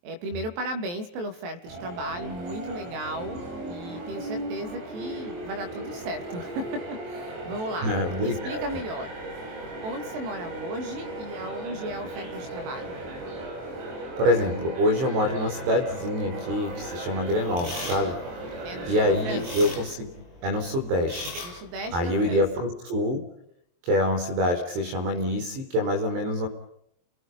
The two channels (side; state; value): left; late; 23 ms